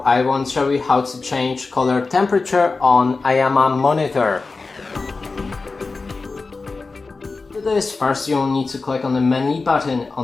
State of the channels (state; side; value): quieter; right; 4.0 dB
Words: I want to show you how to change color temperature on IIYAMA monitor. To do this, first you'll need to click on the menu button